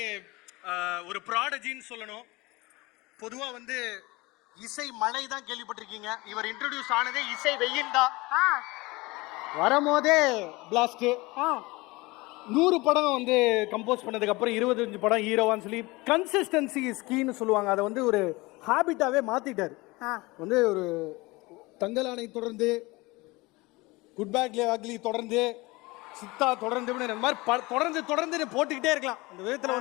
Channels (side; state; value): right; quieter; 22.8 dB